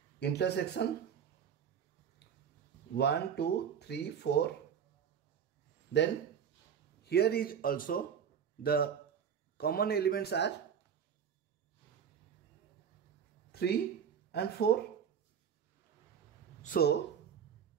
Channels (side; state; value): left; quieter; 7.8 dB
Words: intersection 1, 2, 3, 4. Then here is also the common elements are 3 and 4. So